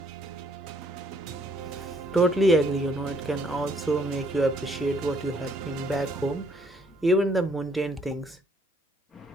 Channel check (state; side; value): normal; both; correlation 0.66